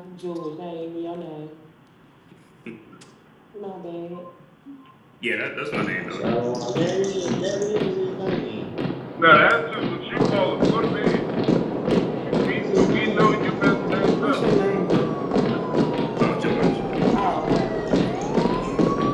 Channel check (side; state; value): both; identical; correlation 1.00